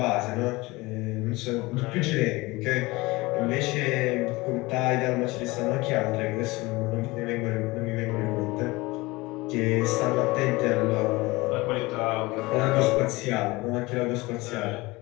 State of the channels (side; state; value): right; quieter; 22.1 dB